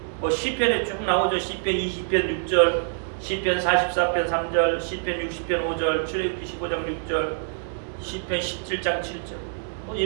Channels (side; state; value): left; silent; digital silence